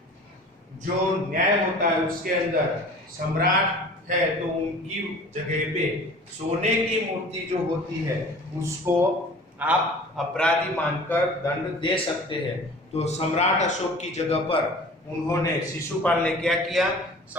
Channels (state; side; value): normal; both; correlation 0.44